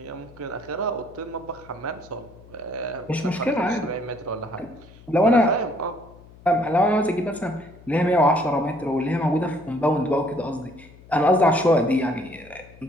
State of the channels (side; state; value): left; noise; hum, 23 dB below the sound